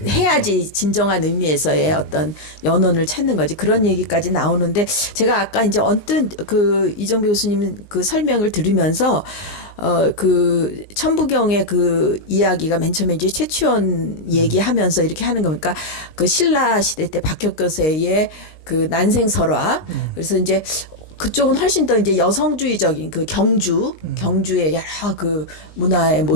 해야지 진정한 의미에서의 어떤 연원을 찾는 거지 그런 얘기까지 나오는데 제가 아까 이제 언뜻 그 이정배 교수님 그 설명을 들으면서 그 천부경의 그 이야기가 맨 처음에 이제 최치원 얘기하면서 이렇게 하는 거니까 그 신라 시대 때 박혁거세의 그 난생설화 그래서 이제 그쪽은 훨씬 더 이제 여성주의적인 그 경주의 여러 그 문화의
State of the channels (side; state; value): right; late; 19 ms